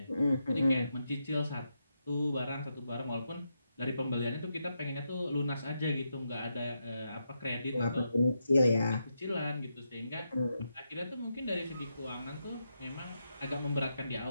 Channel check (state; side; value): inverted; both; correlation -0.84